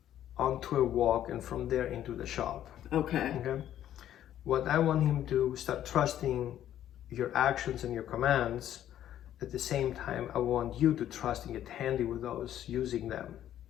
onto a walk and from there into the shop. Okay. Okay. What I want him to start trusting your actions and your commands. At the same time, I want you to trust and get handy with those, using them,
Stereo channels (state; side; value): quieter; right; 11.5 dB